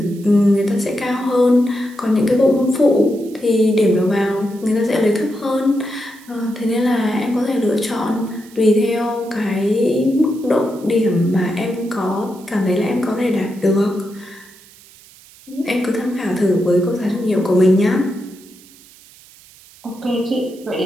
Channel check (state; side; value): noise; right; hiss, 24 dB below the sound